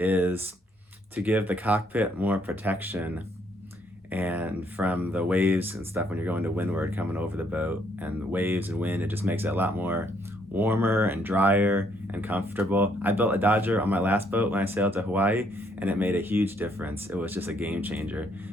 to give the cockpit more protection and from the waves and stuff when you're going to windward coming over the boat, and the waves and wind, it just makes it a lot more warmer and drier and comfortable. I built a Dodger on my last boat when I sailed to Hawaii, and it made a huge difference. It was just a game changer.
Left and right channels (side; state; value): both; normal; correlation 0.69